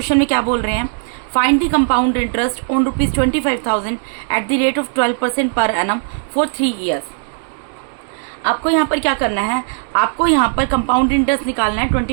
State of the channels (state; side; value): silent; left; digital silence